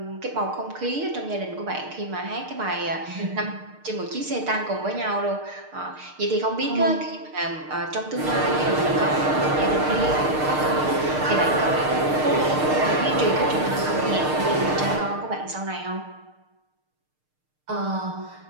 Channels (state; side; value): late; left; 6.6 ms